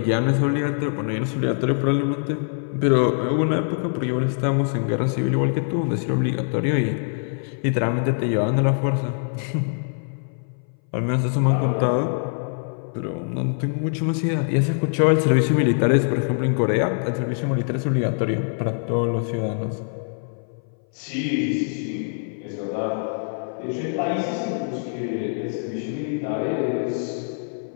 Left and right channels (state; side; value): silent; right; 60 dB below the other